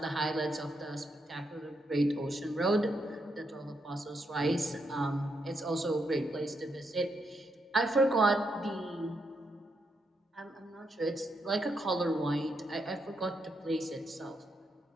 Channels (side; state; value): both; normal; correlation 0.80